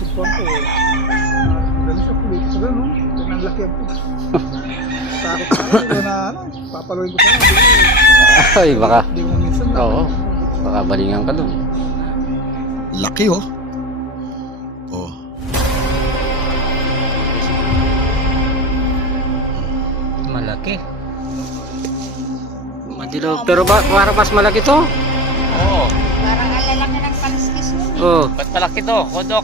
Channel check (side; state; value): both; normal; correlation 0.24